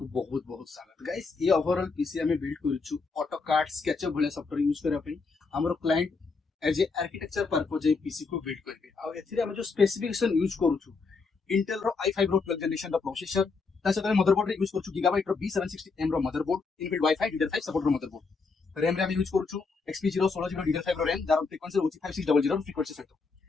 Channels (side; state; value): right; quieter; 4.5 dB